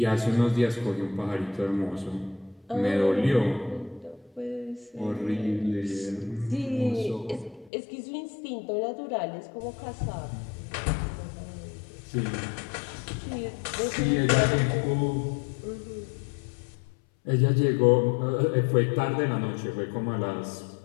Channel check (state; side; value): drops out; right; at 7.7 s